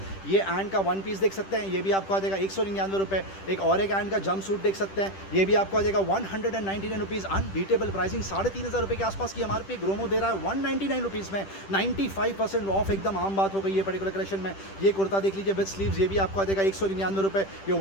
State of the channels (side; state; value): right; late; 10 ms